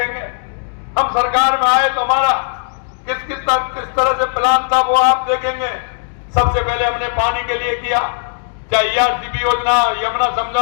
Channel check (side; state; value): right; silent; digital silence